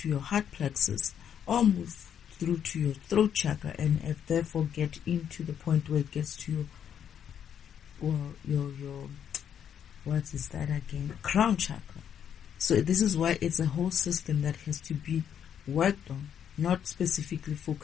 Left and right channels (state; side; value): quieter; right; 8.8 dB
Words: to your heart plexus, or move through to your throat chakra, and therefore get into the point where it gets to your what is that again? Crown chakra. So this is why it's a whole system that has to be worked on, not specifically